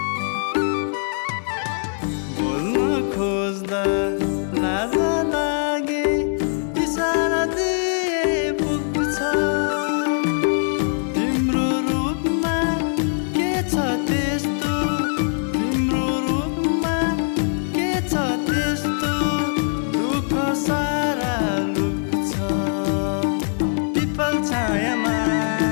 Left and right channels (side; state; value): right; silent; digital silence